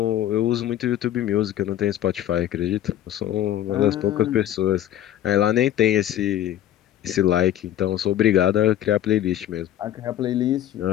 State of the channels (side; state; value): right; quieter; 12.0 dB